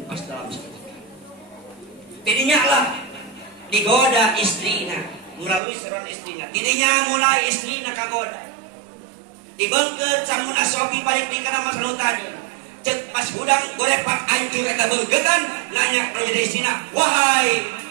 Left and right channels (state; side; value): drops out; left; at 5.6 s